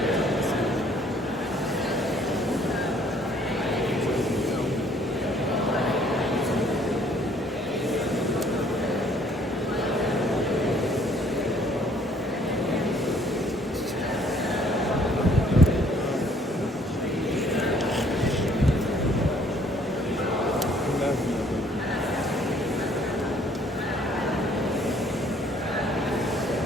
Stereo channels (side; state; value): both; normal; correlation 0.61